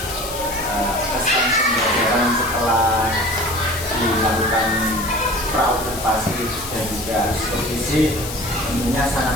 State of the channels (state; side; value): noise; left; hiss, 9 dB below the sound